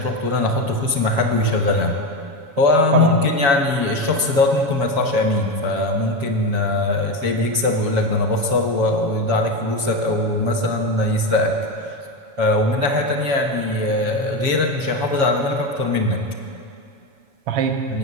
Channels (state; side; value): late; left; 7.2 ms